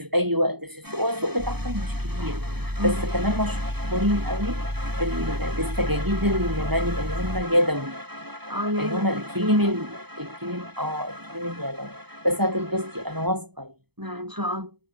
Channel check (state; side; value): late; left; 0.98 ms